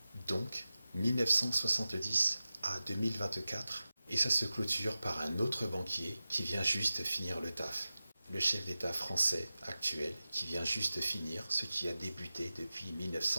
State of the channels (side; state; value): both; inverted; correlation -0.95